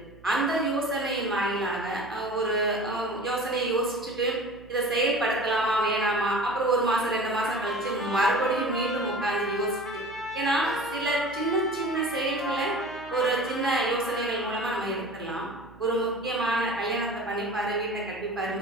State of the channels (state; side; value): noise; right; hum, 23 dB below the sound